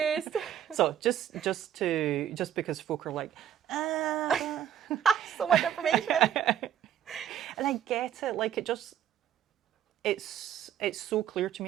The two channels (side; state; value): left; quieter; 10.4 dB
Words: So just because folk are like, so much information. And I get it. Like it's so clear to